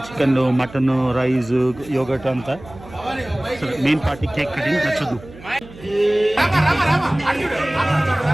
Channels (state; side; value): noise; right; hum, 19 dB below the sound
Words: చికెన్, మటన్, రైస్, యోగట్ అంతా. మెయిన్ పార్టీ కేక్ కటింగ్ నచ్చదు.